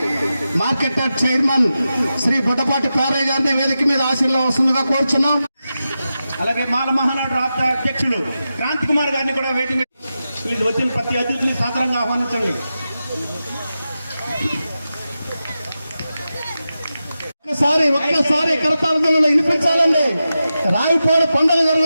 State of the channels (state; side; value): inverted; both; correlation -0.91